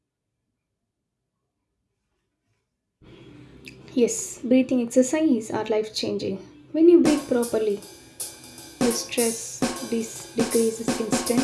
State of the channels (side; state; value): both; identical; correlation 1.00